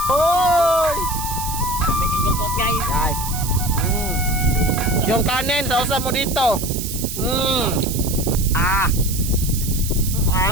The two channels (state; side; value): noise; right; hiss, 7 dB below the sound